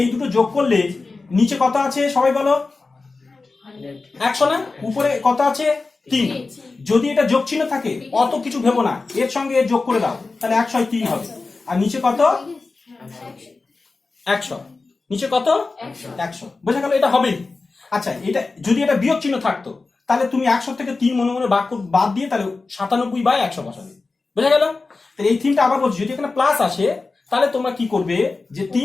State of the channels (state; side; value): quieter; right; 3.8 dB